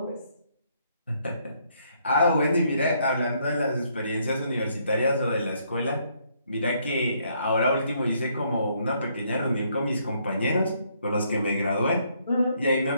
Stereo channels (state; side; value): inverted; both; correlation -0.70